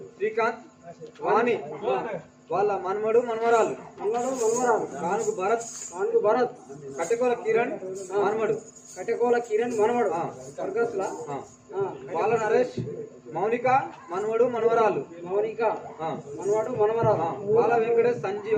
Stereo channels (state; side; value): identical; both; correlation 1.00